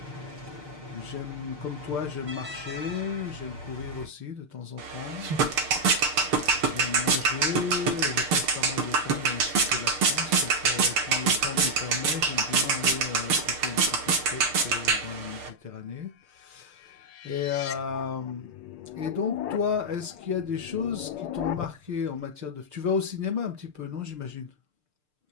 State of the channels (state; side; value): late; left; 6.7 ms